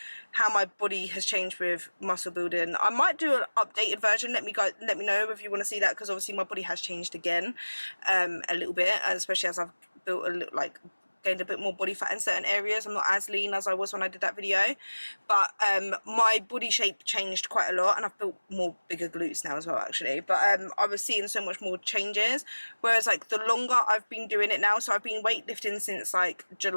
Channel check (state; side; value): inverted; both; correlation -1.00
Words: how my body has changed with muscle building, I might do an updated version. Let me know if you want to see that, because obviously my body has changed again a little bit, and especially as I've built gained a bit more body fat in certain areas. I'm not as lean as I was when I did that video, but my body shape changed quite a lot, and I've built more bigger glutes now as well, actually. But I was seeing so much more changes, whereas like the longer I've been doing it now, so I've been weightlifting since like